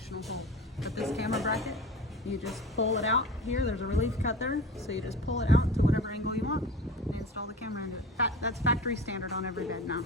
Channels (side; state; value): both; normal; correlation 0.34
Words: hole. But this camera bracket, you just pull it out here, there's a relief cut there, so you just pull it out to whatever angle you want and install the camera into it. That's factory standard on every bed now.